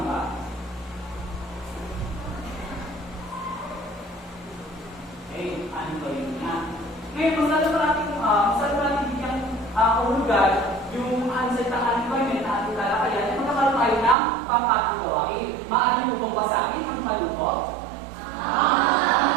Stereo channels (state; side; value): drops out; left; at 14.2 s